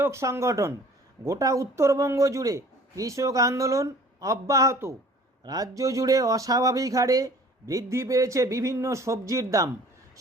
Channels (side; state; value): both; normal; correlation 0.50